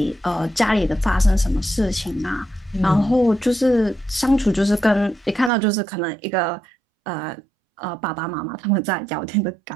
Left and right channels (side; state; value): left; drops out; at 5.5 s